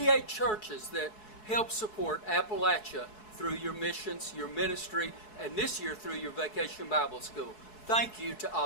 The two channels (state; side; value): late; right; 4.7 ms